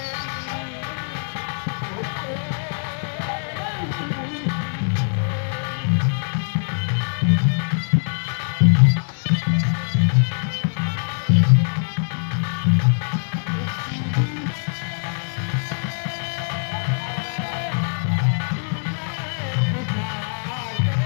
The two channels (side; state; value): right; silent; digital silence